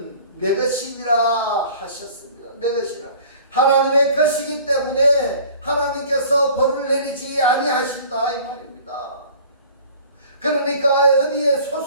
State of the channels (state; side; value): inverted; both; correlation -0.47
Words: 내 것이니라 하셨습니다. 내 것이라. 하나님의 것이기 때문에 하나님께서 벌을 내리지 아니하신다 이 말입니다. 그러니까 어디에